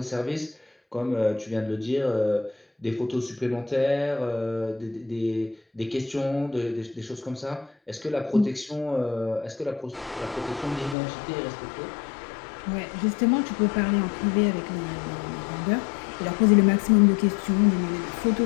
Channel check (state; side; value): drops out; right; at 11.0 s